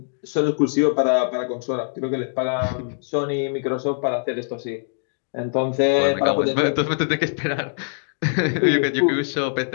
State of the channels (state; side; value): silent; right; digital silence